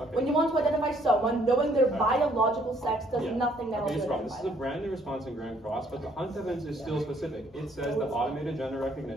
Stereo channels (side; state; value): both; normal; correlation 0.65